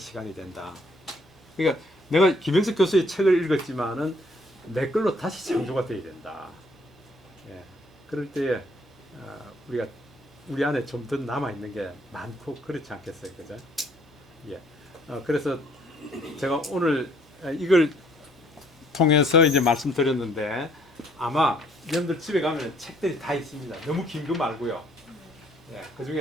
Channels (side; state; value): both; normal; correlation 0.63